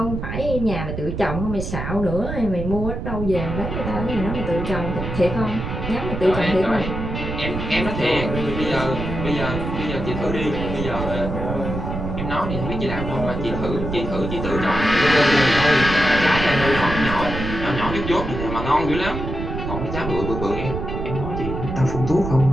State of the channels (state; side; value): noise; right; rumble, 5 dB below the sound